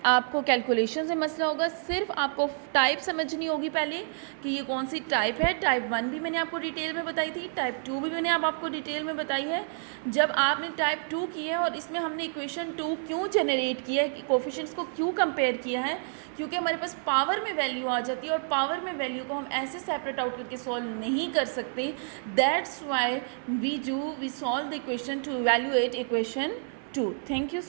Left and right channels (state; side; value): silent; left; 59 dB below the other